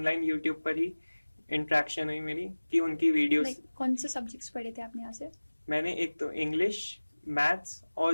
यूट्यूब पर ही इंटरेक्शन हुई मेरी कि उनकी वीडियोस। लाइक कौन से सब्जेक्ट्स पढ़े थे आपने यहाँ से? मैंने एक तो इंग्लिश, मैथ्स और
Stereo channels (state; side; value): inverted; both; correlation -1.00